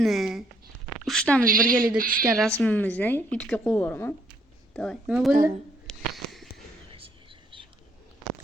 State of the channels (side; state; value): both; normal; correlation 0.69